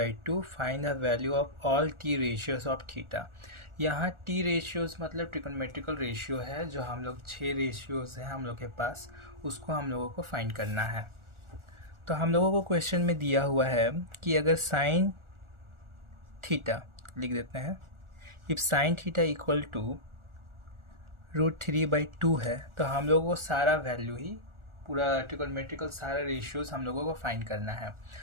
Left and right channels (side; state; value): left; late; 1.4 ms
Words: find the value of all T ratios of theta. यहाँ टी रेशियोज मतलब ट्रिगोनोमेट्रिकल रेशियो है, जो हम लोग 6 रेशियोज हैं हम लोग के पास, उसको हम लोगों को फाइंड करना है। तो हम लोगों को क्वेश्चन में दिया हुआ है कि अगर साइन थीटा लिख देते हैं, if sine theta equal to √3/2 है, तो हम लोगों को सारा वैल्यू ही पूरा ट्रिगोनोमेट्रिकल सारा रेशियोज हम लोगों को फाइंड करना है।